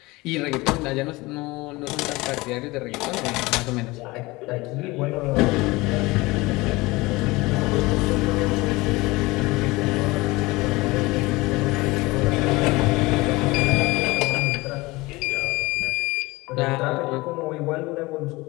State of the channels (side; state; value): right; quieter; 22.0 dB